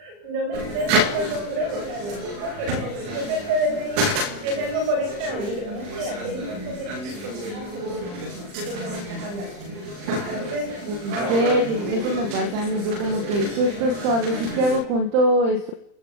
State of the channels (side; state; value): left; late; 39 ms